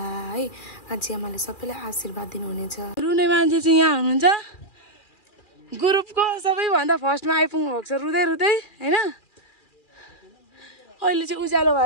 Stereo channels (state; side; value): late; right; 2.4 ms